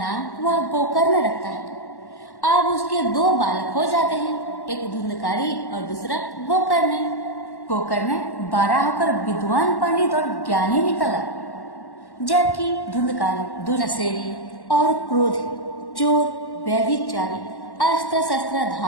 वह गोकर्ण रखता है। अब उसके 2 बालक हो जाते हैं, एक धुंधकारी और दूसरा गोकर्ण। गोकर्ण बड़ा होकर विद्वान, पंडित और ज्ञानी निकला, जबकि धुंधकारी दुर्नसेरी और क्रोधी, चोर, व्यभिचारी, अस्त्र शस्त्र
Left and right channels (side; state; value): right; late; 1.1 ms